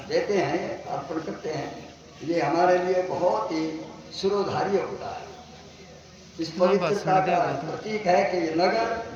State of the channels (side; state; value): both; identical; correlation 1.00